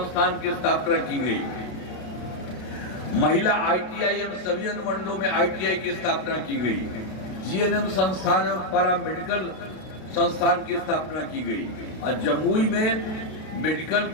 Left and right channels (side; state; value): right; late; 32 ms